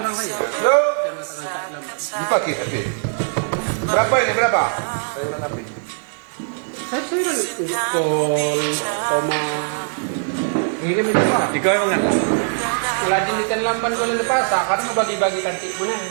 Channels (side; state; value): left; silent; 65 dB below the other